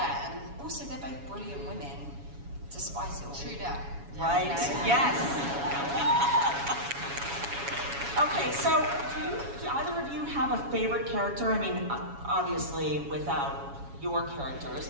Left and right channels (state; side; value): late; left; 7.2 ms